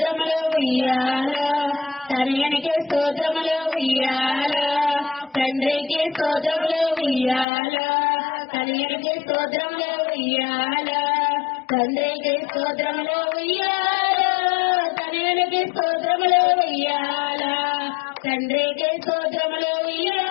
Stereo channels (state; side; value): drops out; right; at 7.5 s